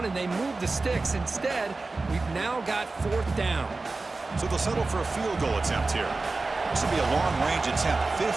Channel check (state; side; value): quieter; left; 3.6 dB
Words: and they move the sticks. Instead, we've now got fourth down. So they'll settle for a field goal attempt here. This will be a long-range attempt,